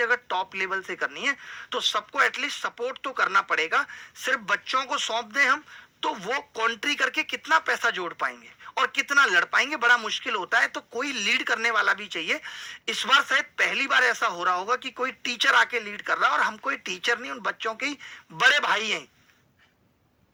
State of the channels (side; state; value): both; identical; correlation 1.00